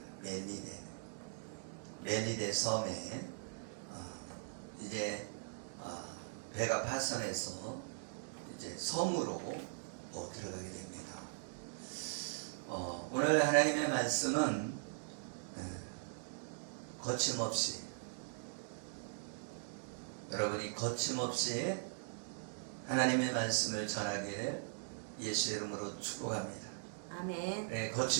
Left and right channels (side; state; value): left; silent; digital silence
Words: 멜리데 섬에 이제 배가 파선해서 이제 섬으로 들어가게 됩니다. 오늘 하나님의 말씀은 거침없이, 여러분이 거침없이 하나님의 말씀을 전하길 예수의 이름으로 축복합니다. 아멘. 네,